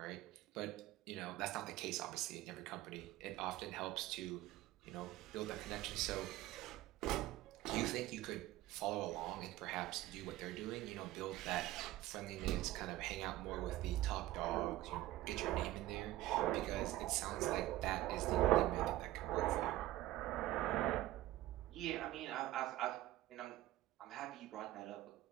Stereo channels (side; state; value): left; quieter; 15.8 dB